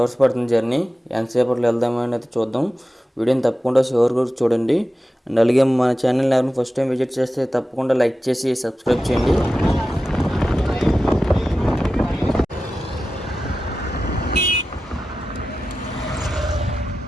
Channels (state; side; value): normal; both; correlation 0.93